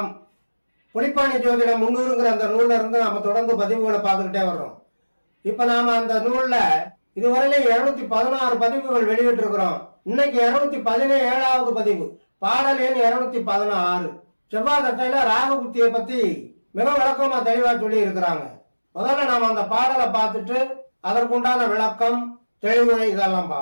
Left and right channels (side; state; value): both; inverted; correlation -1.00